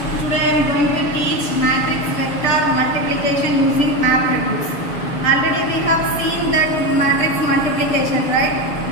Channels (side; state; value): right; late; 6.9 ms